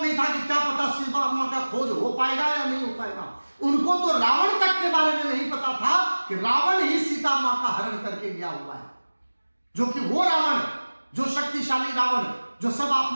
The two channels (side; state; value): both; inverted; correlation -1.00